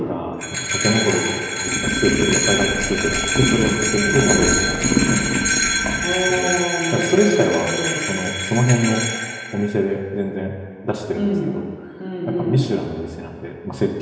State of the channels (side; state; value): both; identical; correlation 1.00